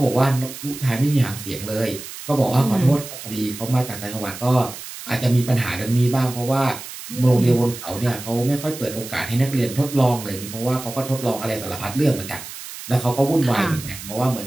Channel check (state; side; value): noise; right; hiss, 12 dB below the sound